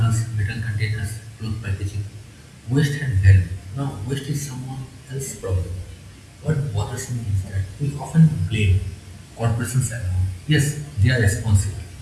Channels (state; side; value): identical; both; correlation 1.00